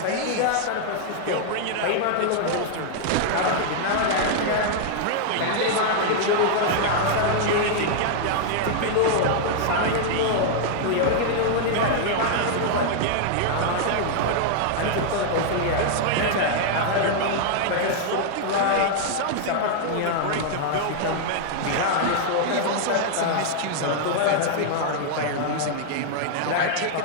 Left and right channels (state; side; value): different; both; correlation -0.01